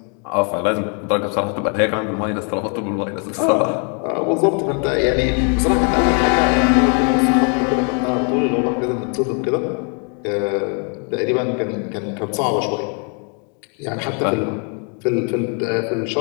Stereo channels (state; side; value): quieter; right; 39.3 dB